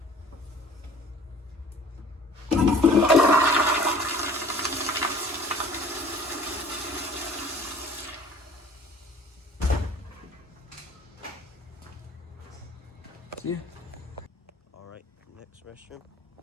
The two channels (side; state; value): both; normal; correlation 0.50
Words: Yeah. All right, next restroom.